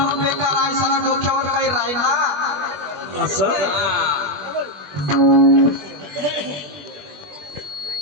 बेकार आहे सणा डोक्यावर काही राहीना असं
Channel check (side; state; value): left; late; 21 ms